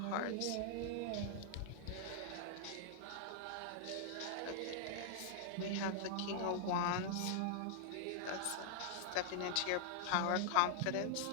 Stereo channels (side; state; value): both; different; correlation -0.01